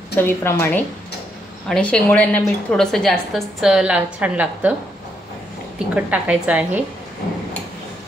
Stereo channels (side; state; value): both; normal; correlation 0.76